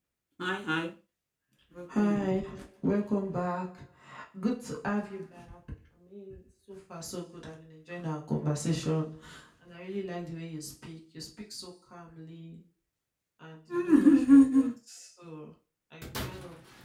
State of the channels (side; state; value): both; identical; correlation 1.00